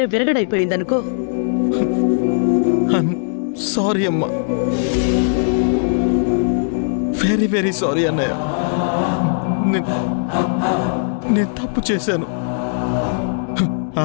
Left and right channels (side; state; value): right; silent; digital silence